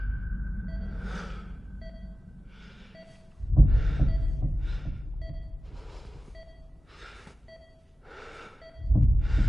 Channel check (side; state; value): both; normal; correlation 0.95